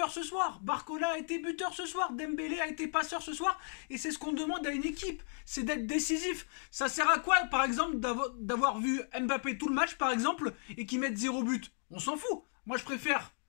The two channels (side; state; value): right; silent; 55 dB below the other